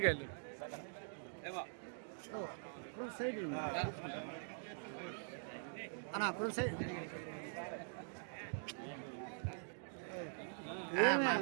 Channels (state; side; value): silent; left; digital silence